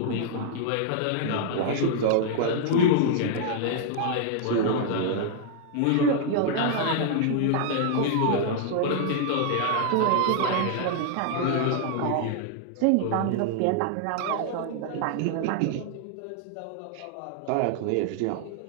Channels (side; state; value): both; different; correlation 0.00